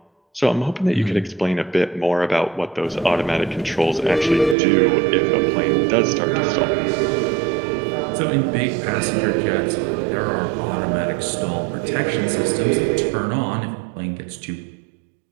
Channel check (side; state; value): left; drops out; at 4.5 s